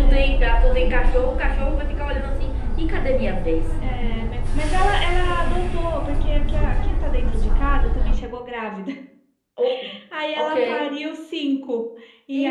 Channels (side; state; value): both; identical; correlation 1.00